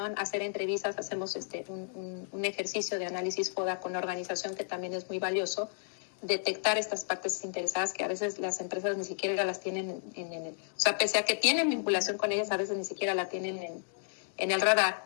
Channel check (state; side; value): silent; right; digital silence